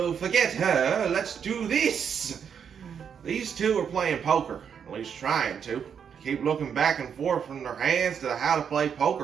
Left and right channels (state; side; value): quieter; left; 7.4 dB